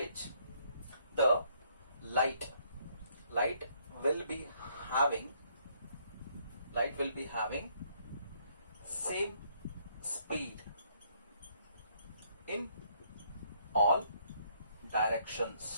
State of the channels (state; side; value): inverted; both; correlation -0.67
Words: the light will be having same speed in all